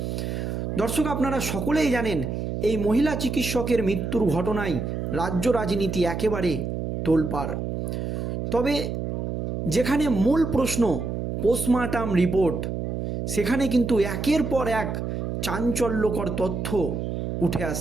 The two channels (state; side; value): noise; right; hum, 3 dB below the sound